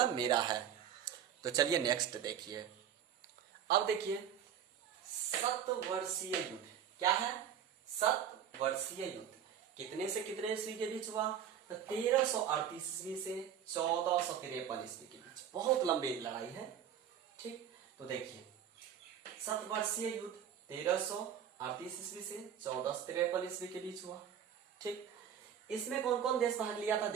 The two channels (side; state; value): left; quieter; 9.0 dB